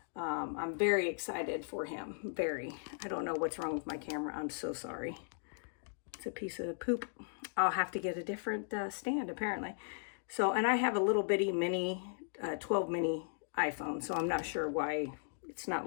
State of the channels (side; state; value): right; silent; digital silence